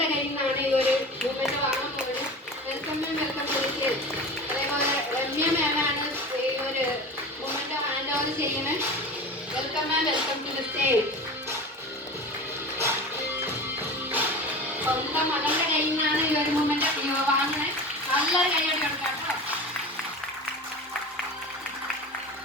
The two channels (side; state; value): both; normal; correlation 0.32